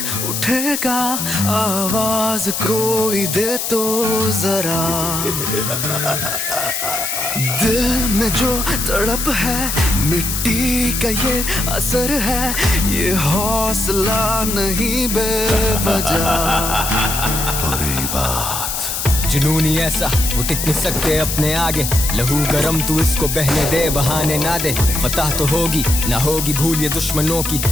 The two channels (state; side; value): noise; left; hiss, 3 dB below the sound